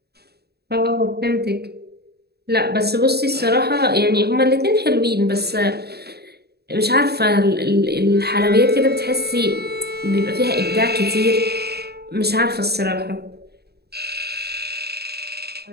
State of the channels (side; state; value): left; late; 0.47 ms